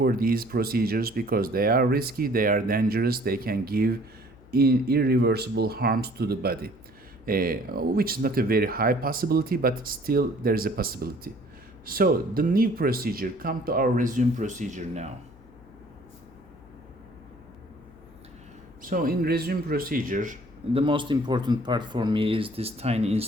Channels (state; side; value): noise; left; hum, 24 dB below the sound